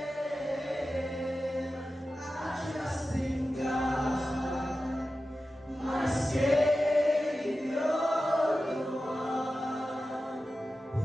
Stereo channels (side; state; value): both; normal; correlation 0.93